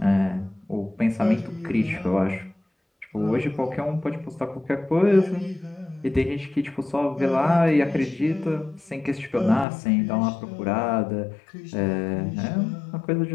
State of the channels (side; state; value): right; drops out; at 9.7 s